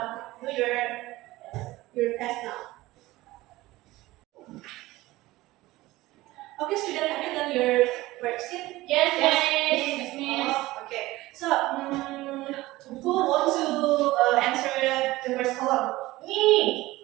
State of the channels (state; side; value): quieter; left; 18.4 dB